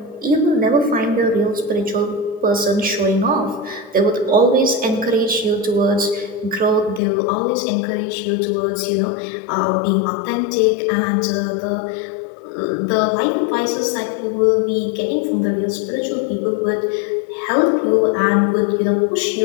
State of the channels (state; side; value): drops out; right; at 7.0 s